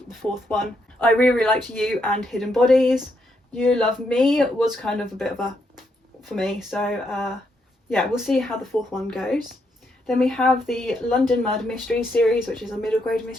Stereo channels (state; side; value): normal; both; correlation 0.78